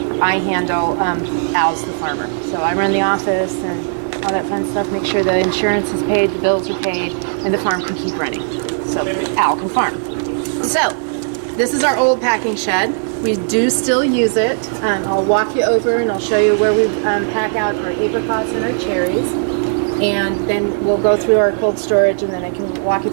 I handle. Al's the farmer. So I run the office and all that fun stuff, make sure the insurance is paid, the bills are paid, and the farm can keep running. So Al can farm. So this is our old packing shed. We do still use it. I'll walk you over and I'll show you where we pack out our apricots and our cherries. And then we'll go through our cold storage, and then I can walk you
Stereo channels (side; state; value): left; silent; digital silence